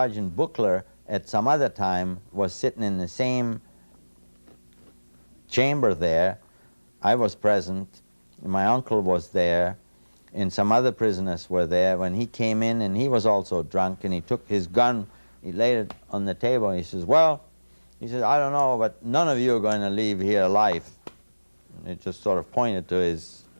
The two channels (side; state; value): both; inverted; correlation -1.00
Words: Buchler at some other time was sitting in the same chamber there. I was present, my uncle was there, and some other prisoners were there when he came in, and he was also drunk, and he took his gun, he laid it on the table, and he says, well, he says, I don't know, but none of you are going to leave here alive. And it just sort of pointed to his